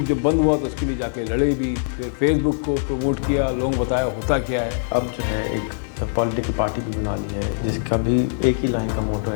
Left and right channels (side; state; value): right; silent; 62 dB below the other